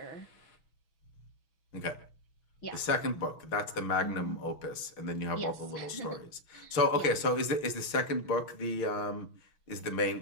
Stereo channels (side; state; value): right; late; 6.3 ms